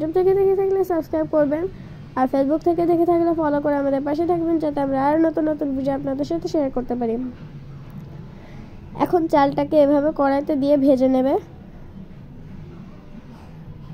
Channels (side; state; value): both; identical; correlation 1.00